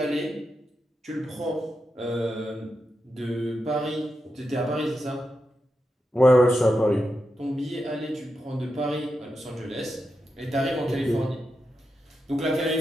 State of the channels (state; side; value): normal; both; correlation 0.87